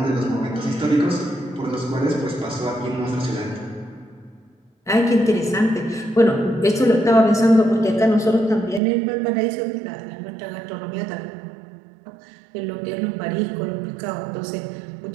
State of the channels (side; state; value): left; drops out; at 8.8 s